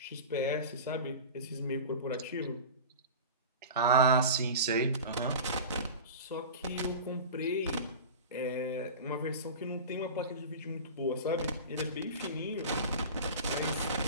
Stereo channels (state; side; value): inverted; both; correlation -0.32